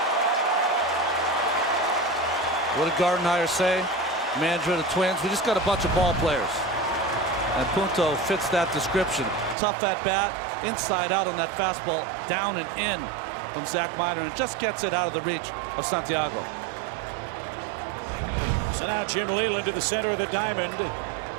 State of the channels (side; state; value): left; drops out; at 9.6 s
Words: What did Gardenhire say? Manager of the Twins, we just got a bunch of ball players. And Punto fits that description. Tough at bat, inside out on that fastball, down and in from Zach Minor, and just gets it out of the reach of Santiago. So now Jim Leyland to the center of the diamond.